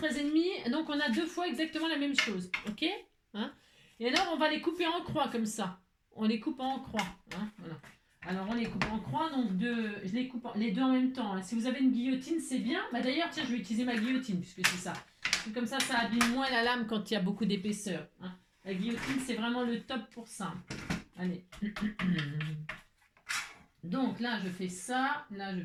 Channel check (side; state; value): both; identical; correlation 1.00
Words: donc on a deux fois exactement la même chose, ok, hein. Et alors on va les couper en croix comme ça. On les coupe en croix, hein, voilà. Alors on les coupe en croix, donc je les coupe les deux en même temps. Hein. Si vous avez une guillotine, c'est bien. Bah, d'ailleurs, tiens, je vais utiliser ma guillotine puisque c'est ça. Comme ça abîme moins la lame quand il y a beaucoup d'épaisseur. Hein. La guillotine, c'est vraiment le top pour ça. Allez. Donc là, je fais ça. Là, je